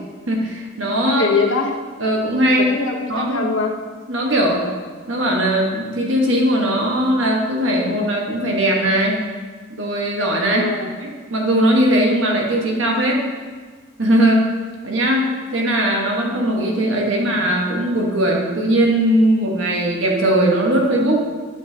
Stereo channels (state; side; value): normal; both; correlation 0.40